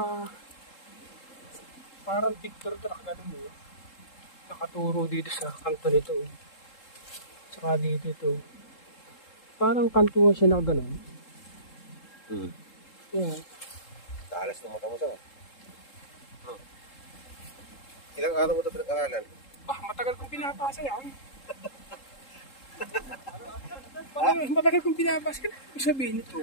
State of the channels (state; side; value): late; right; 3.7 ms